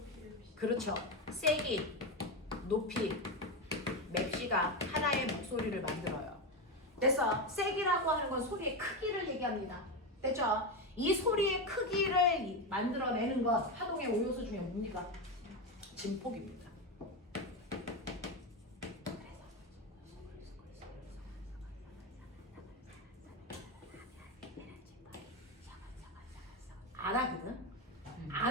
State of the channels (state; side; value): normal; both; correlation 0.14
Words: 그렇죠. 세기, 높이, 맵시가 하나의 목소리를 만들어요. 됐어. 세기라고 하는 건 소리의 크기를 얘기합니다. 됐죠? 이 소리의 크기를 만들어내는 것, 파동의 5요소 중에 뭡니까? 진폭입니다. 안 하거든?